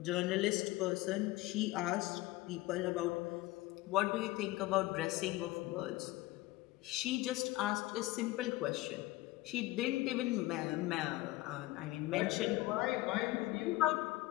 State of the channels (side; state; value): right; quieter; 18.8 dB